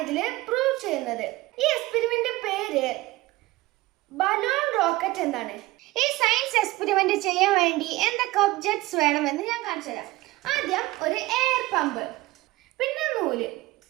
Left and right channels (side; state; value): left; quieter; 19.3 dB